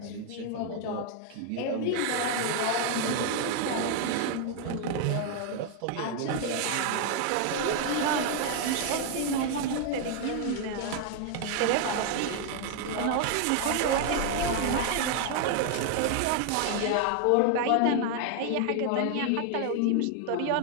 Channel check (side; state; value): both; different; correlation 0.00